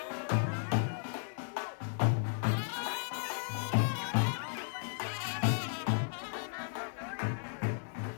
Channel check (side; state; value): right; silent; digital silence